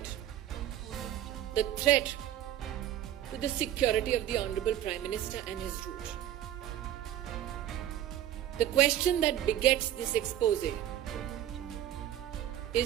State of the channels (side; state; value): left; quieter; 12.0 dB